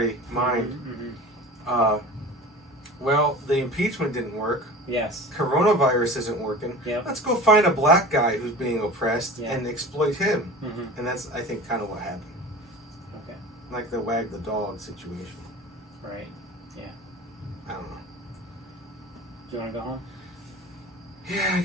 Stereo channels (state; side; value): normal; both; correlation 0.37